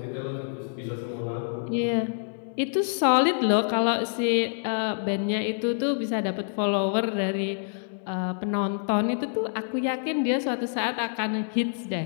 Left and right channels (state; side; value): silent; right; 60 dB below the other